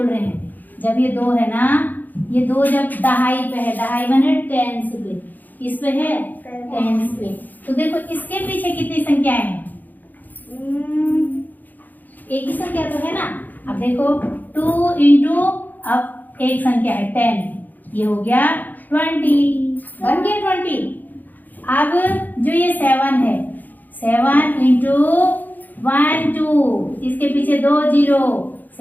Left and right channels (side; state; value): right; late; 0.085 ms